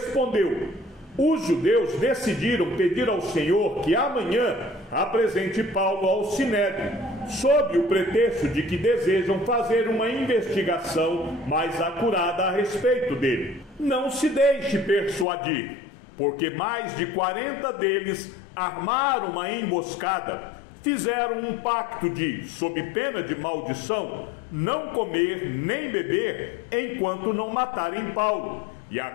os judeus decidiram pedir ao Senhor que amanhã apresente Paulo ao sinédrio, sob o pretexto de que desejam fazer uma investigação mais acurada a respeito dele. Não se deixe persuadir, porque mais de 40 deles armaram uma emboscada, fizeram um pacto de, sob pena de maldição, não comer nem beber enquanto não matarem Paulo. E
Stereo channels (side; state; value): right; drops out; at 15.2 s